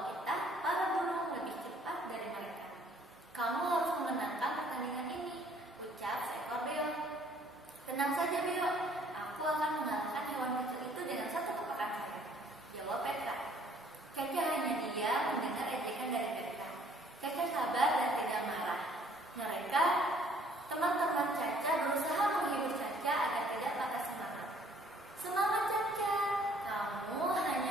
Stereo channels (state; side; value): normal; both; correlation 0.60